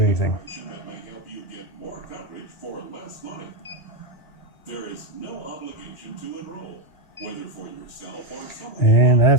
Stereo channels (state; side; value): late; right; 2.0 ms